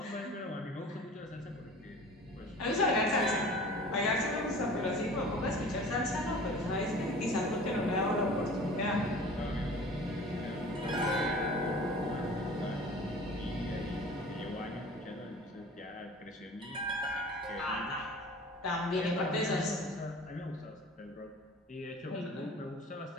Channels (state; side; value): normal; both; correlation 0.42